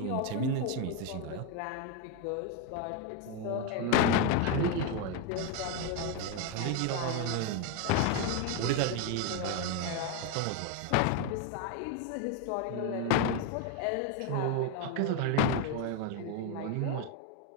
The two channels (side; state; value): both; different; correlation 0.02